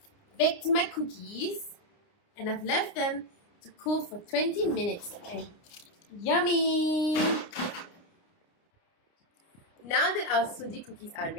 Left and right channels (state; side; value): late; right; 29 ms